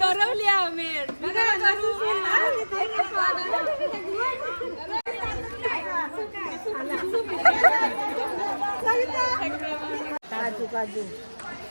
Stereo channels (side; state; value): both; inverted; correlation -1.00